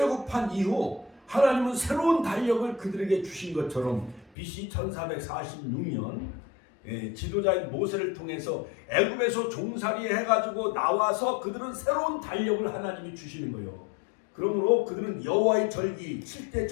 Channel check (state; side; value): drops out; right; at 4.3 s